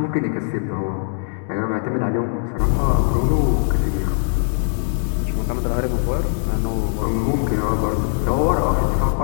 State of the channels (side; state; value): right; silent; digital silence